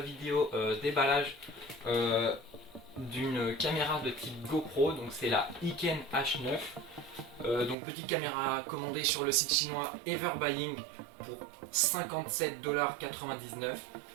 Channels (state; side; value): drops out; left; at 7.8 s